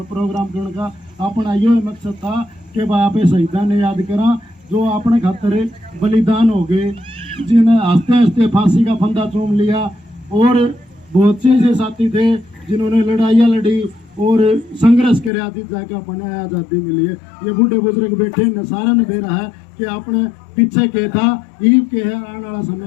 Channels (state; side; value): drops out; right; at 15.3 s